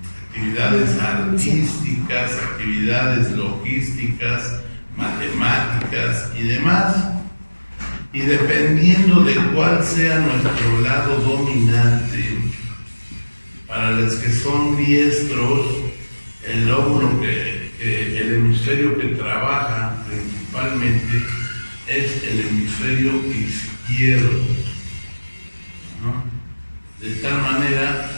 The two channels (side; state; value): both; inverted; correlation -1.00